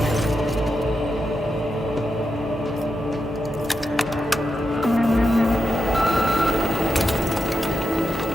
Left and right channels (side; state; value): both; normal; correlation 0.87